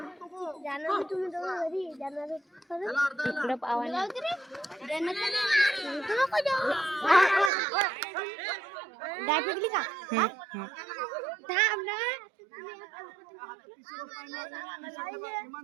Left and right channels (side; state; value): left; drops out; at 7.5 s